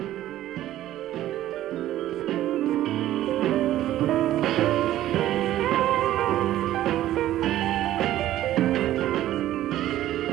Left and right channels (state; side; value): quieter; left; 13.5 dB